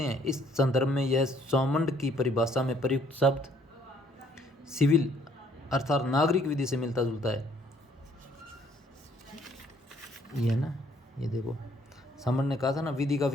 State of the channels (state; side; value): normal; both; correlation 0.63